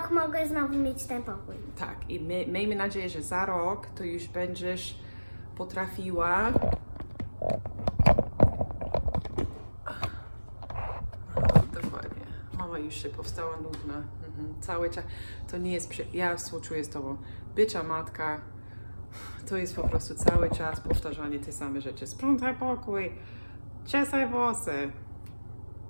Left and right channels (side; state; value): both; inverted; correlation -1.00